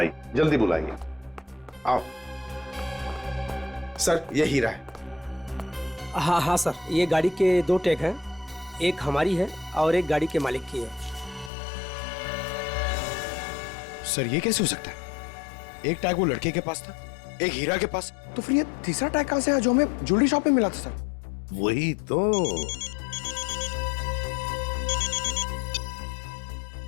जल्दी बुलाइए। आओ। सर ये हीरा है। हाँ हाँ सर, ये गाड़ी के 2 टैग हैं, एक हमारी है और एक गाड़ी के मालिक की है। सर ये कैसे हो सकता है? एक टैग वो लड़के के पास था, एक हीरा के पास, तो फिर ये तीसरा टैग कहां से आया जो हमें ज्वेलरी शॉप में मिला था सर? वही तो।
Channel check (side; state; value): right; drops out; at 11.5 s